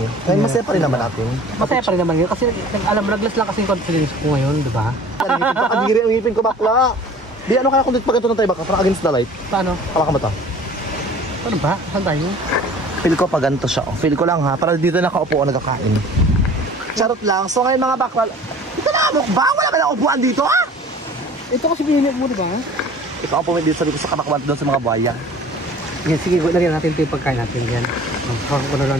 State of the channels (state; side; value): normal; both; correlation 0.46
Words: Kaya masaya pa rin naman natin. Masaya pa rin naman yun. Kasi alam mo, naglas lang kasi yung confidence ko ngayon, di ba? Kadiri ang ngipin ko, bakla. Di, ano kaya kung dito pag ito na tayo, bakla? Parang against the light. Paano? Kala ka ba ito? Paano ba? Saan tayo? Feel ko pa ganito siya. Feel ko lang ha, para dito nakaupo o nagkakain. Charot lang. So ngayon mga bakla, ito na mukbang, wala ba na upuan dito ha? Ito kasi binili mo, di ba? Ito ang pumili dito sabi ko sa kamakwan doon sa mga buhaya. Sige, lagyan natin ito yung pagkain natin yan. Parang ko na